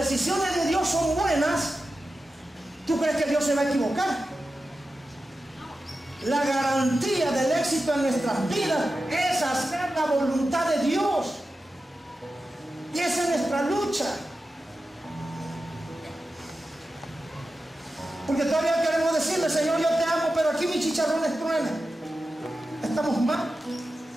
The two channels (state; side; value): normal; both; correlation 0.92